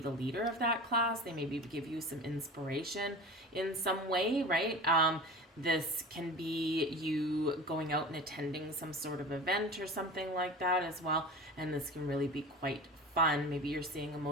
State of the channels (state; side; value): normal; both; correlation 0.34